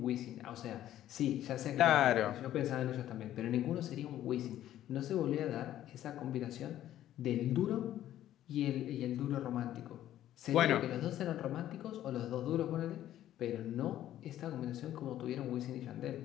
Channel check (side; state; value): right; quieter; 12.5 dB